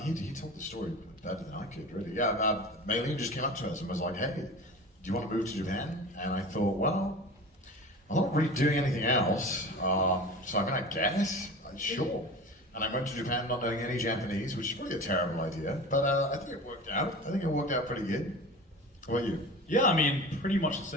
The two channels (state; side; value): normal; both; correlation 0.34